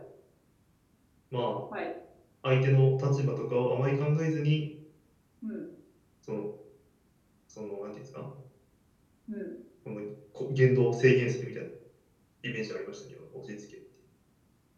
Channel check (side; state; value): both; identical; correlation 1.00